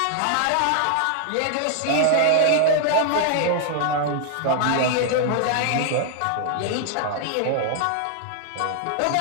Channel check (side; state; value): both; different; correlation 0.00